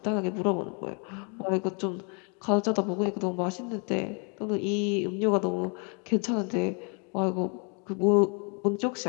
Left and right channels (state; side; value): quieter; right; 36.7 dB